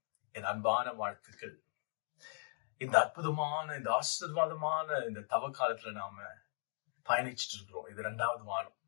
என் அன்பான வாழ்த்துக்கள். இந்த அற்புதமான, இந்த ஆசீர்வாதமான இந்த தவ காலத்துல நாம பயணிச்சுட்டு இருக்கிறோம். இது 2வது வாரம்.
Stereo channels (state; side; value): silent; right; 52 dB below the other